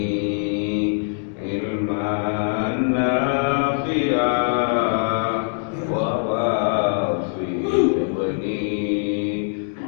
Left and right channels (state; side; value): silent; right; digital silence